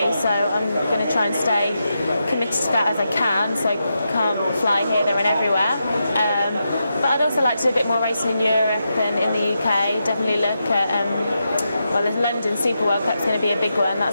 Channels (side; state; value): both; inverted; correlation -0.86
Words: so I'm going to try and stay committed to that as I can, so I can't fly here, there and everywhere. But I'd also like to do a bit more racing in Europe and in the UK. Definitely look at, well, the London Super World Cup's going to be a big one.